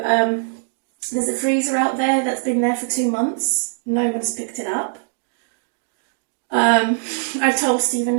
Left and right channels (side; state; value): left; silent; digital silence